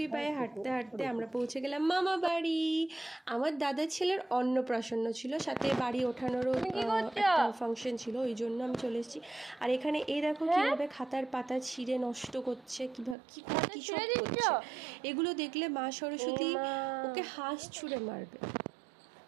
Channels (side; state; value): left; drops out; at 13.2 s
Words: পায়ে হাঁটতে হাঁটতে আমরা পৌঁছে গেলাম মামা বাড়ি। আমার দাদার ছেলের অন্নপ্রাশন ছিল, সাথে বাড়ি ওঠানোরও একটা ফাংশন ছিল, ওই জন্য আমি চলে এসেছি। আর এখানে এই দেখো কীভাবে খাতার পাতা ছিঁড়ে নষ্ট করছে, কী সব করছে। এগুলো দেখলে মা সরস্বতী ওকে হাঁস ছুঁড়ে মারবে।